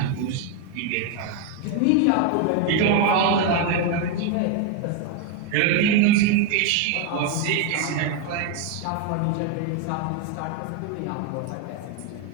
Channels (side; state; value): both; different; correlation 0.02